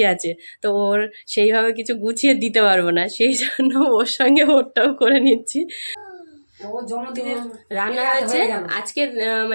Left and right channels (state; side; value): inverted; both; correlation -1.00